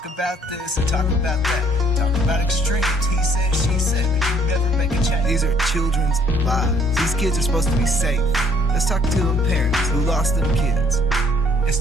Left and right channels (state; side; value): normal; both; correlation 0.63